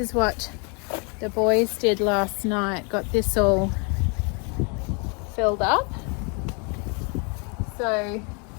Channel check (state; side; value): quieter; right; 35.0 dB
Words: what the boys did last night. Got this all filled up. So